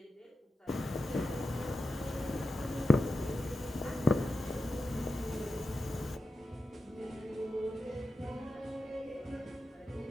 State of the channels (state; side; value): normal; both; correlation 0.90